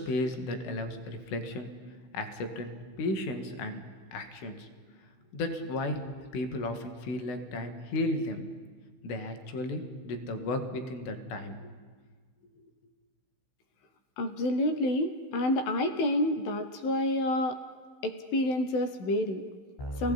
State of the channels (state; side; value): late; right; 16 ms